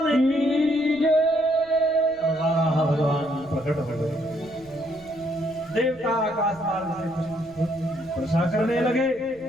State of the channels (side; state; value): right; noise; rumble, 25 dB below the sound